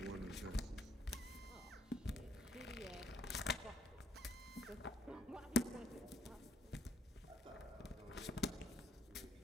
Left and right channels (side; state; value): both; normal; correlation 0.70